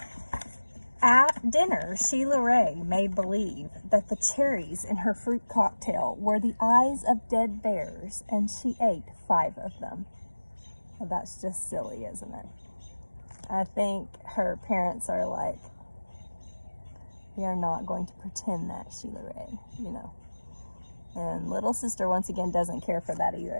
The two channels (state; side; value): inverted; both; correlation -1.00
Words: At dinner, Sheila Rae made believe that the cherries in her fruit cocktail were the eyes of dead bears, and she ate 5 of them. Well, that's just silly, isn't it? I think her parents are like, we are not going to pretend that, Sheila Rae, you know. And little sister, once again, doesn't care for that